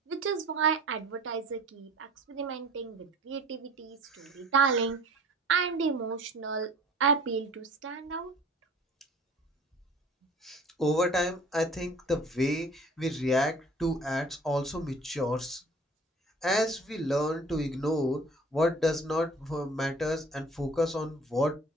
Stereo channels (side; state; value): both; normal; correlation 0.48